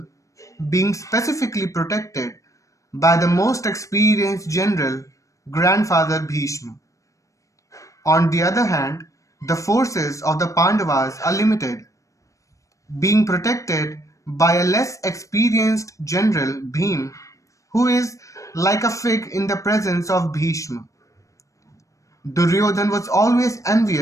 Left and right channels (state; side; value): late; right; 0.16 ms